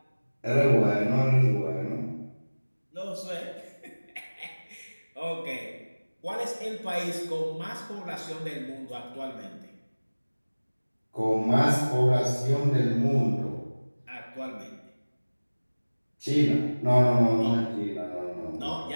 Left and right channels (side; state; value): both; inverted; correlation -1.00